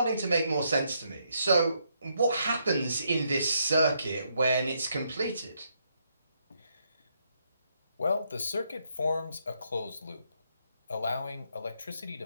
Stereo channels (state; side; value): inverted; both; correlation -0.76